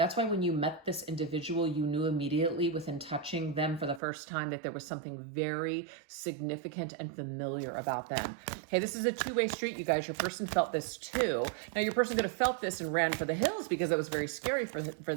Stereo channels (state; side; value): drops out; left; at 4.0 s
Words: why when you met this individual, you knew immediately within touching them for the first time that there was something very significant and familiar about them. Hey, this is a two-way street, you guys. Your person felt this too. Now, your person could have felt this and ran for the hills because it was very scary for